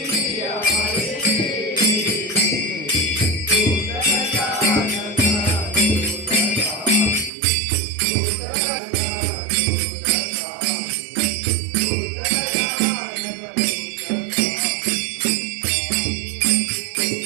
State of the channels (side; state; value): left; drops out; at 7.3 s